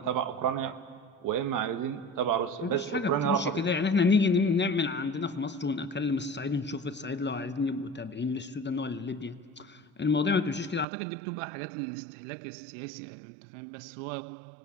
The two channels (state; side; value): drops out; left; at 10.9 s